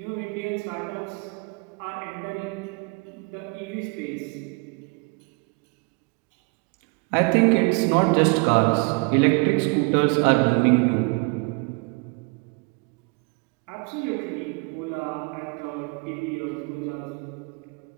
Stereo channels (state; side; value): quieter; left; 30.8 dB